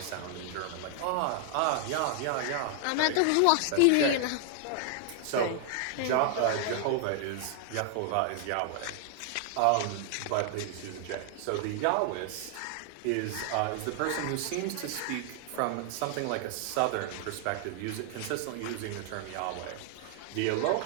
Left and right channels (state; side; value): different; both; correlation 0.00